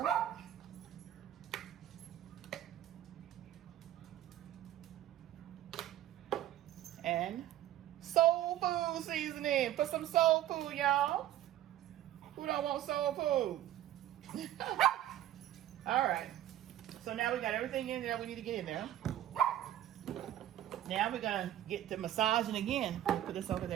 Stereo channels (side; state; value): left; quieter; 12.8 dB